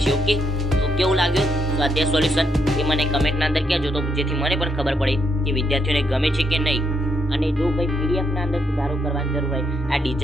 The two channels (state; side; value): normal; both; correlation 0.76